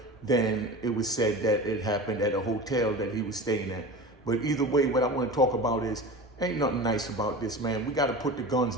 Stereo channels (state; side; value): normal; both; correlation 0.32